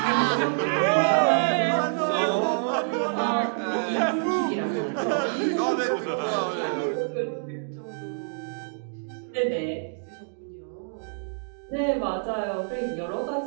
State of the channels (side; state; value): left; silent; digital silence